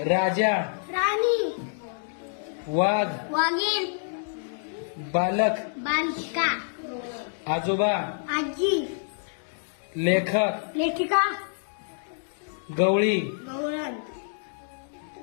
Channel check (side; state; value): right; silent; digital silence